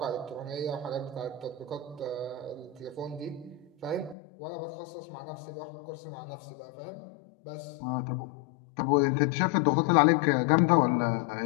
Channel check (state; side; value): drops out; right; at 4.2 s